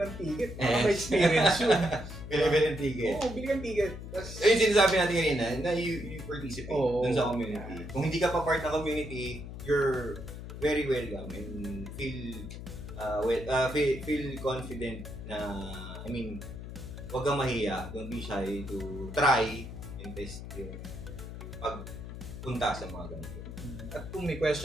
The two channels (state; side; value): noise; left; hum, 10 dB below the sound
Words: ticket. Para may experience yun. Bili ng ticket. Oo, bili ng ticket. Tas, Yung sinasabi natin kanina, na you participate Oo. dun sa community. Kung hindi ka pa part ng community, you're very welcome and feel confident na, I mean, huwag kang mahiya, don't be shy to try and test yung pagpunta sa mga ganito. at kung may